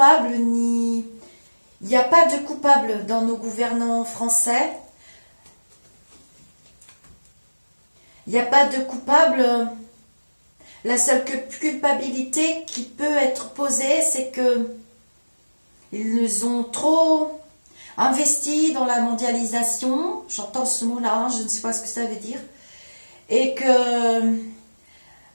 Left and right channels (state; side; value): inverted; both; correlation -1.00